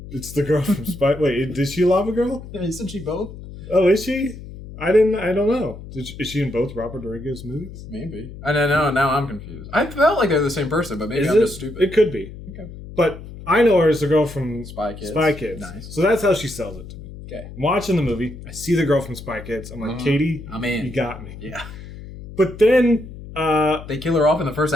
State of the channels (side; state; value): left; noise; hum, 14 dB below the sound